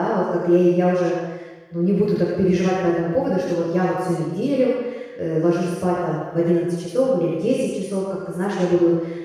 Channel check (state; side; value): identical; both; correlation 1.00